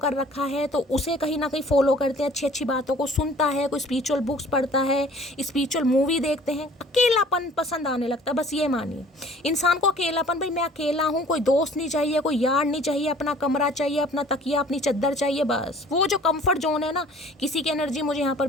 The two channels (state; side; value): normal; both; correlation 0.51